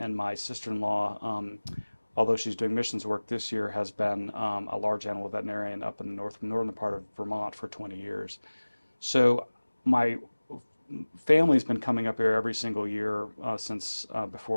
my sister-in-law, although she's doing missions work this year, has been a large animal veterinarian up in the northern part of Vermont for 20 years. So my family's been coming up here every single year since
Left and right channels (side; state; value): both; inverted; correlation -1.00